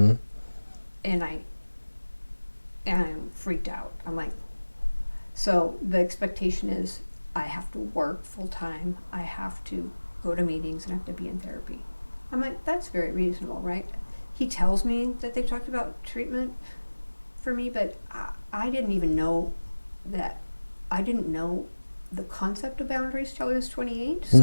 And I'm freaked out. I'm like, so the expectation is I have to work full time. I have to go to meetings and have to be in therapy. I'm like, that's very reasonable, right? He tells me that they've talked about treatment for me, but I didn't even know that. I didn't know the concept of boundaries till I was 28.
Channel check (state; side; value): inverted; both; correlation -1.00